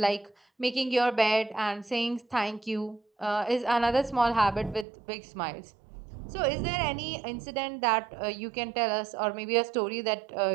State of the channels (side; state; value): left; drops out; at 4.9 s